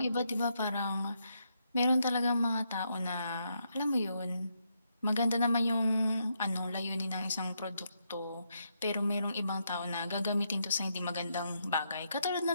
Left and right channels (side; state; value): both; inverted; correlation -0.79